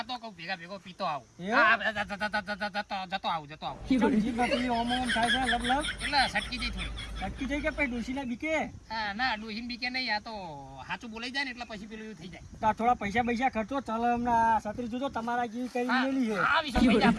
કહું ભેગો પીતો આવું એવું? હા, જતો આવું ચમ જીભમાં પેલી ઓમ ઓમ થાય છે લબ લબ એટલે સટકી જઈ થોડી ચટકી થઈ કે પછી ડોશીના બીકે હા ના ડોહીન બીકે નહીં આ તો સાચું બોલાઈ જાય ને એટલે પછી પેલું એવું થઈ જાય તા થોડા પૈસા પૈસા ખર્ચો ચાલો હમણાં છત્રી જોજો તમારા જેવી કરી મેલી છે હા વિશાલ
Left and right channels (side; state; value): both; identical; correlation 1.00